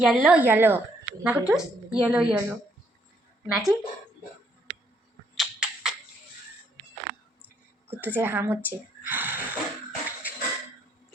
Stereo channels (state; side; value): normal; both; correlation 0.70